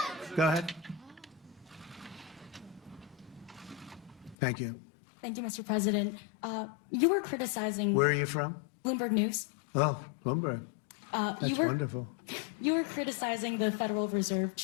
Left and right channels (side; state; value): right; drops out; at 4.4 s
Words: Go ahead. Thank you. Thank you, Mr. President. You were criticizing Where are you from? Bloomberg News. Oh, Bloomberg. That's wonderful. You were criticizing the Federal Reserve